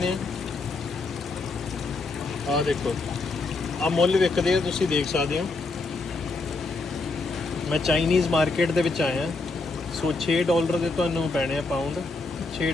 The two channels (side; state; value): right; quieter; 3.5 dB